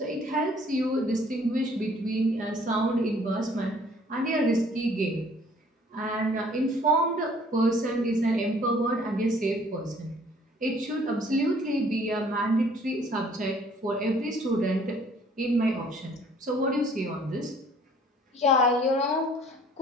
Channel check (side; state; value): both; normal; correlation 0.57